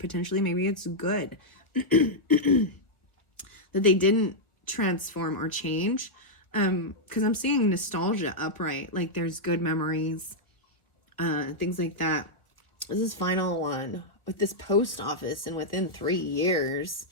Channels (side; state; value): right; late; 1.4 ms